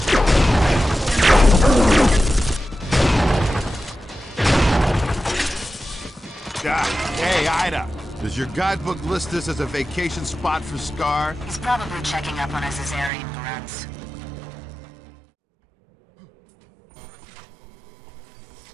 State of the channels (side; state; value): left; drops out; at 13.1 s